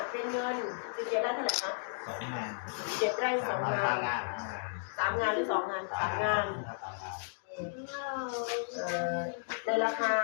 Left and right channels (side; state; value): right; silent; digital silence